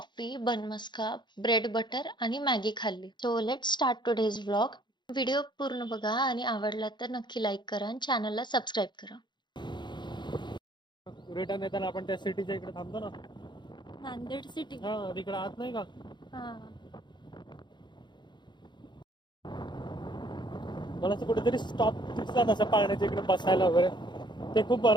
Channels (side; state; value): right; late; 0.22 ms